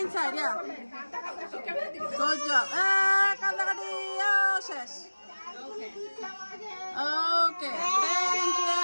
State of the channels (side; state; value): both; inverted; correlation -1.00